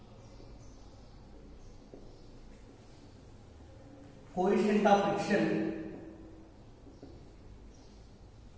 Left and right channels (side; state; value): both; identical; correlation 1.00